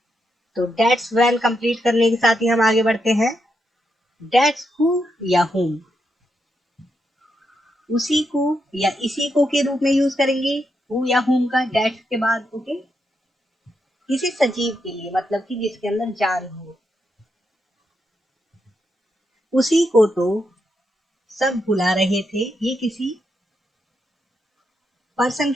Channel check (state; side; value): normal; both; correlation 0.82